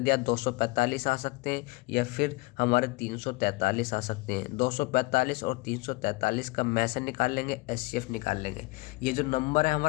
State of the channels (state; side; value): quieter; right; 23.2 dB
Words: 245 आ सकते हैं या फिर हमारे 343 आ सकते हैं। 245 और 343 का में से निकाल लेंगे, एचसीएफ निकाल लेंगे। ये जो नंबर है